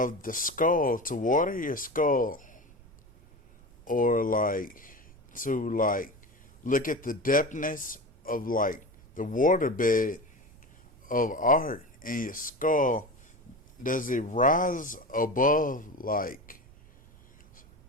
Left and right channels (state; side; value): noise; right; rumble, 25 dB below the sound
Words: the skull, to water your skull, or like to like look at the depthness of like the waterbed of art in your skull. Does it rise above like